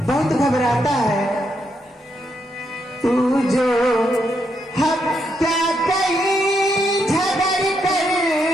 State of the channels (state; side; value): normal; both; correlation 0.79